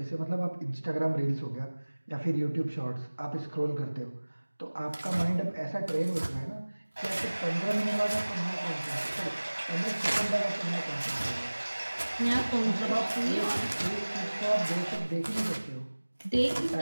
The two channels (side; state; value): both; inverted; correlation -1.00